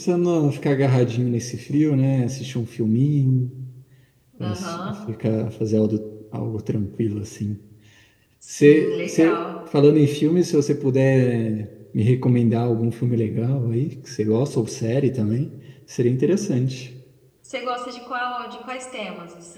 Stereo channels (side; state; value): both; identical; correlation 1.00